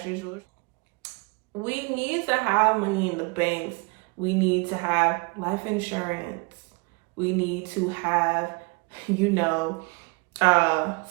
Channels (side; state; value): left; quieter; 30.0 dB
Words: We need to have money in the banks. We need to have life insurance. We need to have,